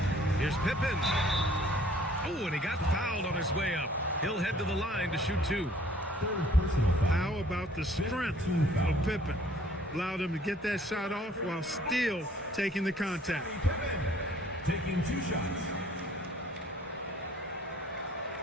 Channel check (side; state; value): both; normal; correlation 0.57